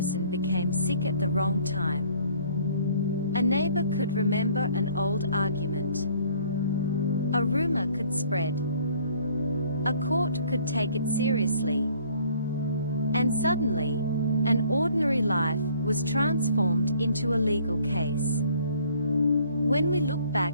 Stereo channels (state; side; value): inverted; both; correlation -0.57